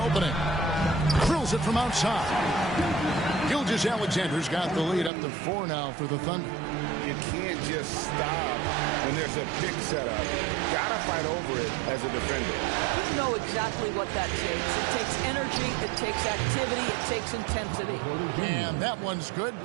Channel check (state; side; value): drops out; left; at 5.1 s